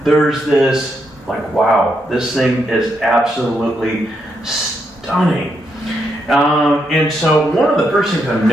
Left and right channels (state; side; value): normal; both; correlation 0.80